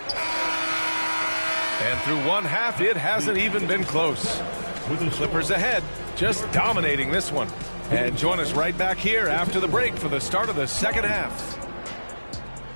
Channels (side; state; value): both; inverted; correlation -1.00